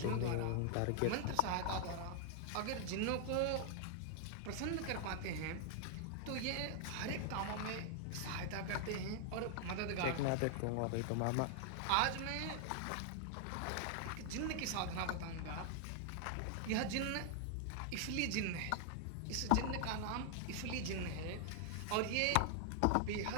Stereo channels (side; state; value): both; different; correlation 0.00